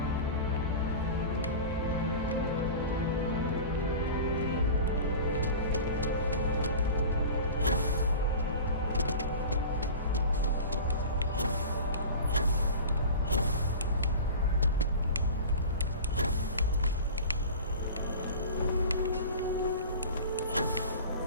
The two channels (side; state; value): both; inverted; correlation -0.35